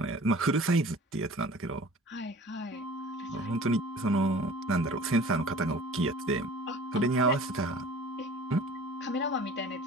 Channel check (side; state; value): both; normal; correlation 0.45